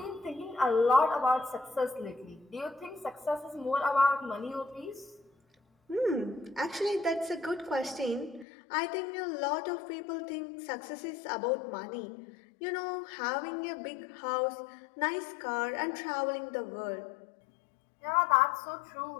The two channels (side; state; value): right; drops out; at 8.5 s